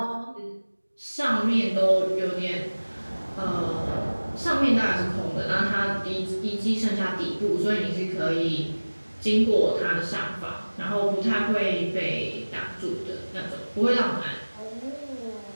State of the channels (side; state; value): both; inverted; correlation -1.00